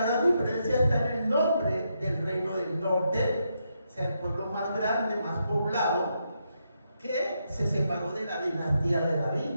gran diferencia está en el nombre del reino del norte, o sea, el pueblo más grande, más poblado, que se separó de la dinastía de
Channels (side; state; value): both; inverted; correlation -0.81